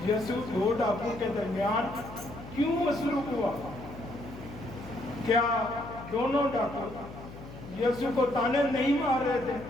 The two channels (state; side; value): noise; left; hum, 14 dB below the sound